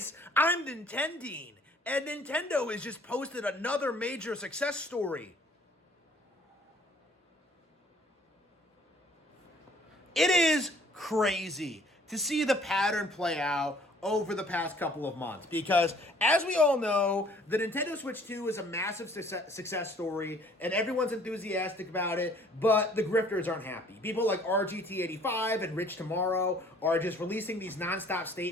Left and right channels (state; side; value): normal; both; correlation 0.57